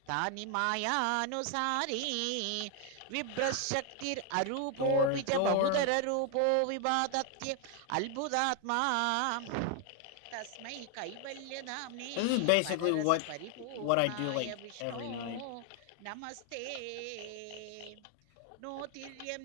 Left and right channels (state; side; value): different; both; correlation 0.00